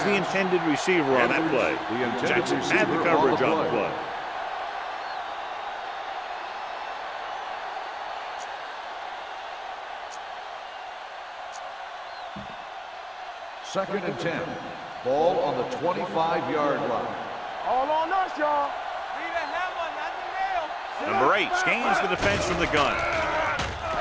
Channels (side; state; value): both; identical; correlation 1.00